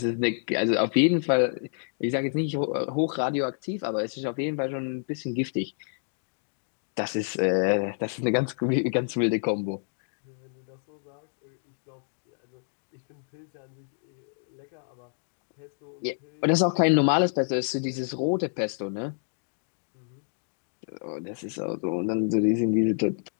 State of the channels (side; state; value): right; silent; digital silence